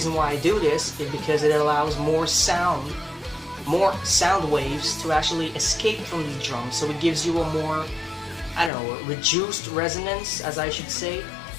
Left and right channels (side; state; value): right; drops out; at 8.7 s